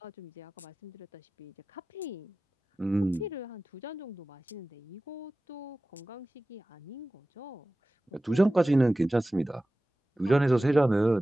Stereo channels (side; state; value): both; normal; correlation 0.96